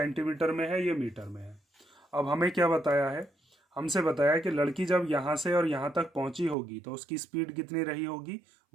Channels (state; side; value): drops out; left; at 6.6 s